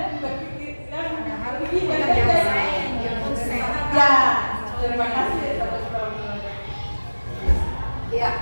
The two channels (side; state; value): both; inverted; correlation -1.00